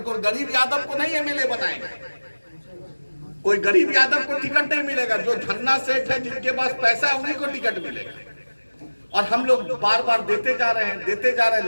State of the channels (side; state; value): both; inverted; correlation -1.00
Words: कोई गरीब यादव को नहीं एमएलए बनाएंगे, कोई गरीब यादव को टिकट नहीं मिलेगा। जो धन्ना सेठ है, जिनके पास पैसा है, उन्हीं को टिकट मिलेगा। और हम लोग बार बार देते जा रहे हैं